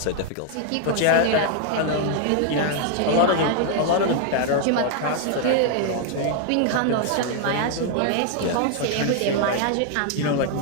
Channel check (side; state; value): both; different; correlation 0.00